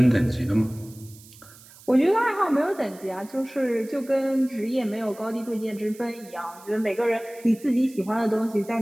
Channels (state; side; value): noise; right; hiss, 22 dB below the sound